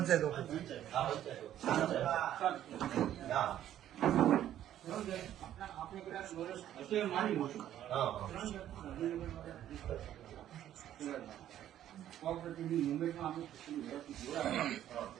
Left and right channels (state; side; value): quieter; left; 11.6 dB